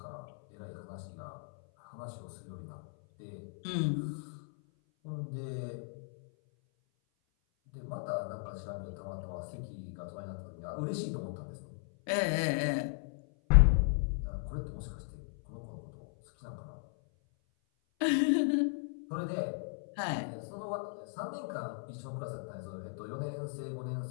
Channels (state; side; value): silent; right; 54 dB below the other